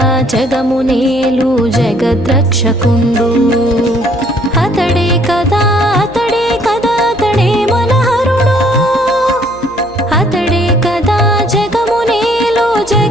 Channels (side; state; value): right; noise; hum, 21 dB below the sound